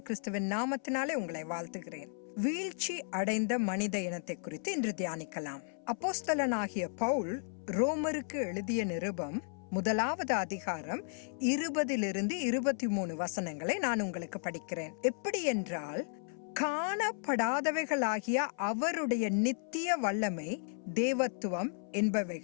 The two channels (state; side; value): silent; right; 55 dB below the other